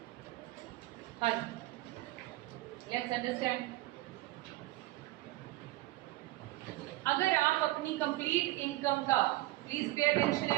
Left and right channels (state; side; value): quieter; left; 18.1 dB